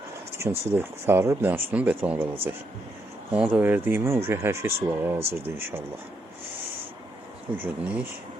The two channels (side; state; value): both; normal; correlation 0.79